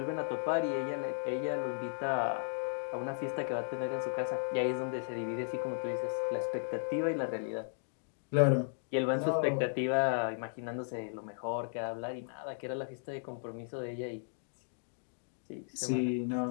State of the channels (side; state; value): right; silent; digital silence